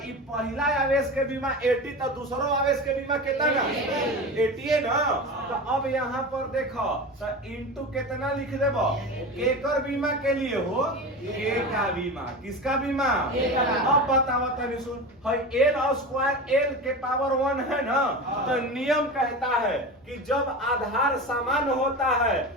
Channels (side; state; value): both; normal; correlation 0.27